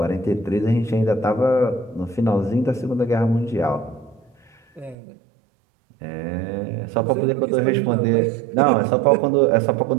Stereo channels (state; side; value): drops out; left; at 5.0 s